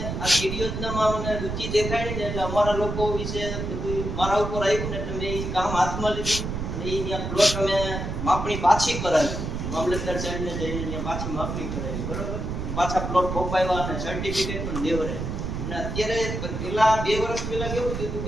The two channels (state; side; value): noise; right; rumble, 4 dB below the sound